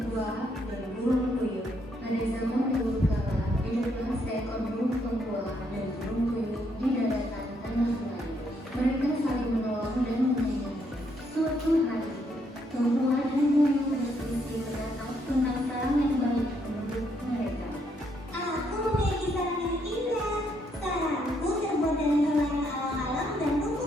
dan burung puyuh. Pada zaman dahulu kala, hiduplah seekor burung tumbuah dan burung puyuh di daratan tanah Melayu. Mereka saling menolong dan menyayangi. Suatu hari, tumbuah dan puyuh berselisih pendapat tentang sarang yang baik untuk mereka. Aku memiliki sarang yang indah. Sarangku terbuat dari helai alang-alang dan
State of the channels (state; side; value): normal; both; correlation 0.73